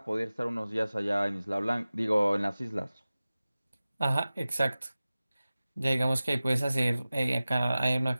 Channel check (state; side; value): inverted; both; correlation -0.97